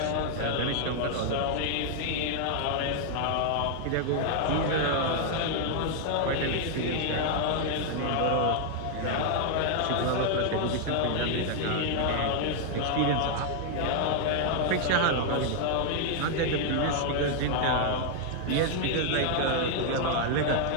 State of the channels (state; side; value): different; both; correlation 0.00